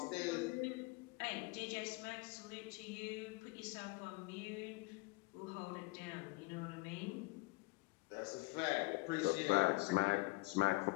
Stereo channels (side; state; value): right; quieter; 22.9 dB